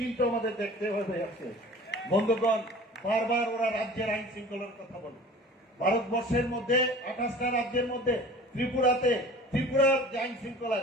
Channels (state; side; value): normal; both; correlation 0.43